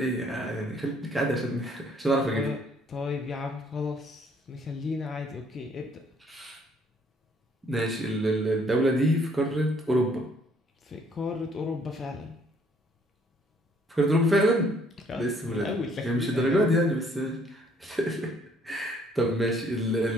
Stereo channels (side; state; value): both; normal; correlation 0.63